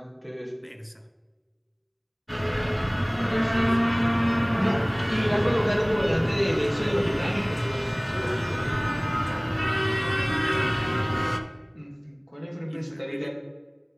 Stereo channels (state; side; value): identical; both; correlation 1.00